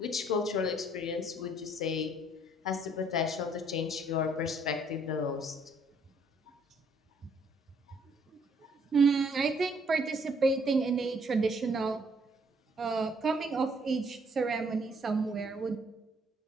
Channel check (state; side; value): normal; both; correlation 0.65